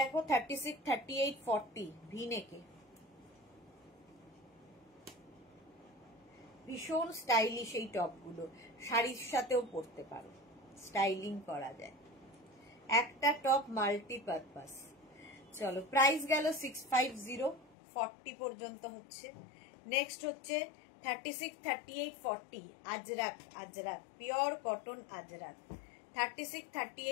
36, 38, 40 ভি নেকে, ভীষণ স্টাইলিশ এই টপগুলো, শাড়ির সাথেও পরতে পারো, স্টাইলিং করা যায়, একটা টপ মাল্টিপারপাস। চলো প্রাইস গেল 650, 40 পর্যন্ত হচ্ছে। নেক্সট হচ্ছে 36, 38, 40 আজরাক, আজরাক পিওর কটন আজরাক, 36,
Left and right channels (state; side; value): drops out; right; at 17.8 s